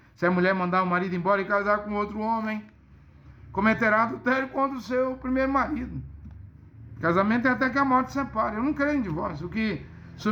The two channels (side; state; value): both; identical; correlation 1.00